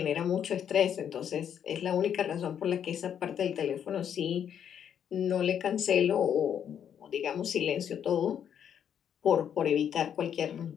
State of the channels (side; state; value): right; quieter; 8.8 dB